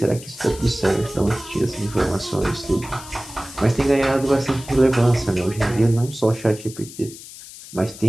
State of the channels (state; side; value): noise; left; hiss, 16 dB below the sound